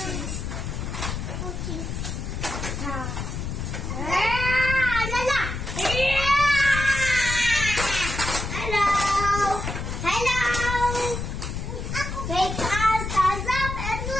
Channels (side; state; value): left; noise; rumble, 4 dB below the sound